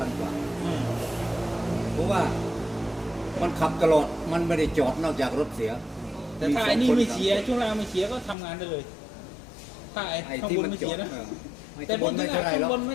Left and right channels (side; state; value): right; drops out; at 8.3 s